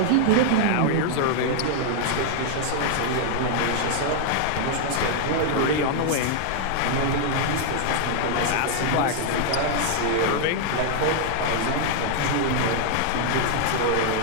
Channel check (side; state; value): both; different; correlation 0.00